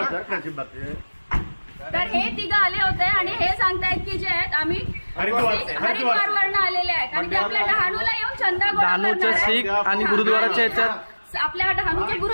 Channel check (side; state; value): both; inverted; correlation -1.00